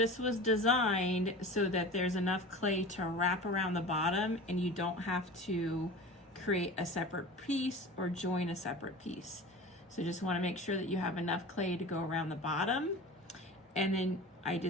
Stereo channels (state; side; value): normal; both; correlation 0.35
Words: was designed so that there's enough clay to wrap around the bottom, and you don't have to create a separate piece or join a separate piece. So just want to make sure that you have enough clay to go around the bottom, and then I